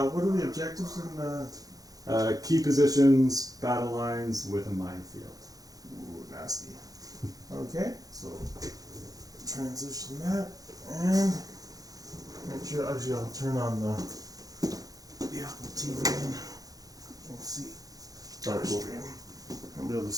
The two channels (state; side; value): late; left; 0.18 ms